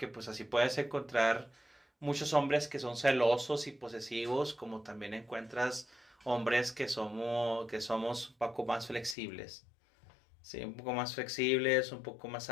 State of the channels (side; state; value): right; drops out; at 9.2 s